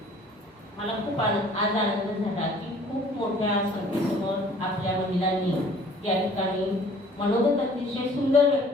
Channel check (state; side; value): normal; both; correlation 0.53